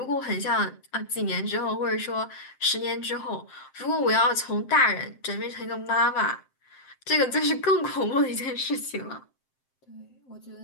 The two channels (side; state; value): right; late; 7.6 ms